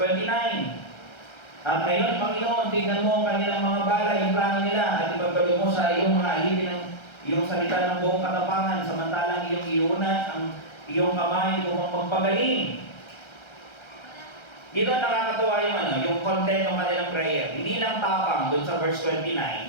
Ngayon, Panginoon, tignan mo ang kanilang mga bala, yung plano nila, at ipagdalo mo sa iyong mga ahiti ng iyong salita ng buong katapangan, samantalang iyong iunat ang iyong kamay upang magpagaling. Dito nakakatuwa yung yung content ng kanilang prayer. Hindi lang tapang dun sa verse 29,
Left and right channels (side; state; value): right; late; 1.3 ms